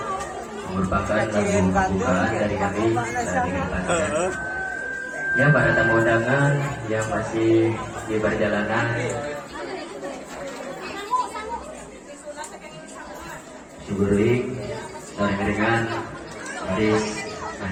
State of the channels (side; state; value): both; identical; correlation 1.00